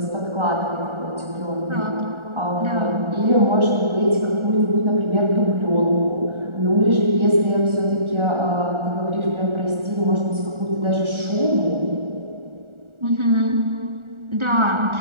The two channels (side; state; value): left; late; 1.4 ms